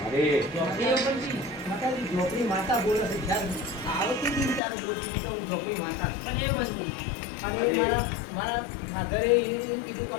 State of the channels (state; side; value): drops out; right; at 4.6 s